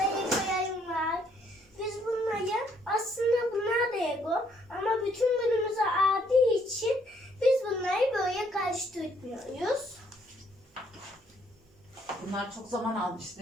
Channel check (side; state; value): both; normal; correlation 0.68